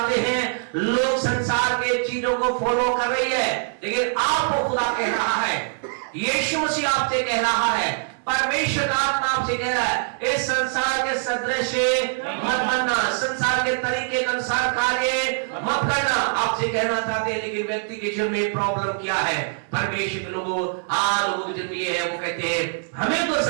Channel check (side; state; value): left; silent; 63 dB below the other